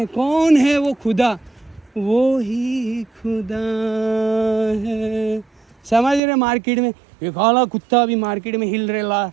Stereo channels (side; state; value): left; drops out; at 6.2 s